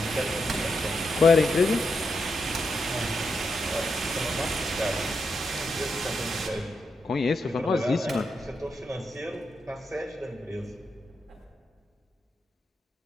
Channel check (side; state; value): both; normal; correlation 0.84